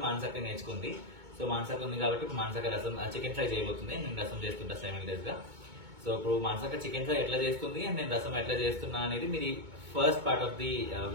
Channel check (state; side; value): late; left; 2.2 ms